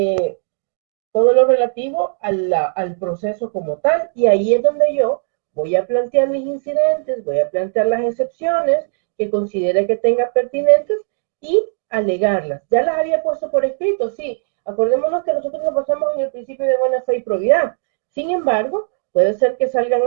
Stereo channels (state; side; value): silent; left; digital silence